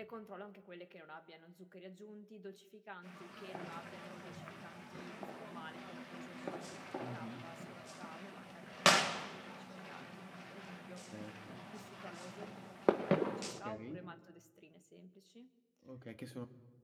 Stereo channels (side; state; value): both; identical; correlation 1.00